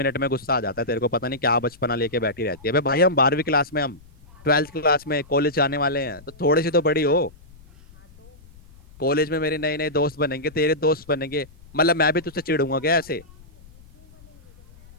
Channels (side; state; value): left; noise; rumble, 24 dB below the sound